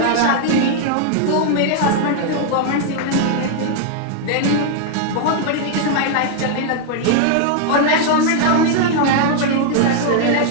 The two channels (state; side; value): different; both; correlation 0.00